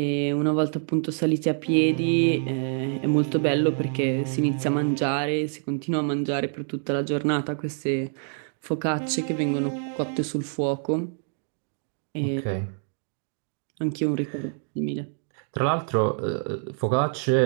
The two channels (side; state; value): left; silent; 61 dB below the other